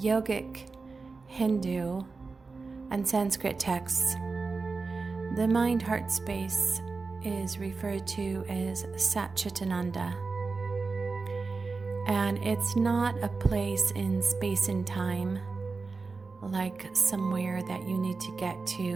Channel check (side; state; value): left; quieter; 4.2 dB